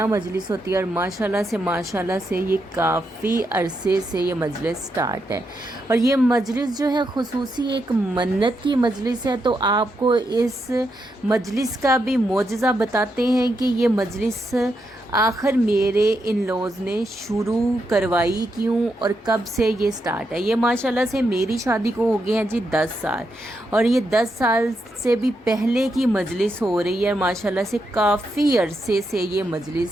मजलिस होती है और माशाल्लाह से ये काफ़ी अरसे से ये मजलिस स्टार्ट है। और ये मजलिस जो है खुसूसी एक मन्नत की मजलिस है। तो आपको इस मजलिस का भी मौजज़ा बताते हैं कि ये मजलिस आखिर मेरे इन लॉज ने शुरू करवाई क्यों और कब से ये स्टार्ट है। ये माशाल्लाह से मेरी शादी को हो गए हैं जी 10 साल और ये 10 साल से भी पहले की मजलिस हो रही है। माशाल्लाह से काफ़ी अरसे से ये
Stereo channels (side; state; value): both; normal; correlation 0.82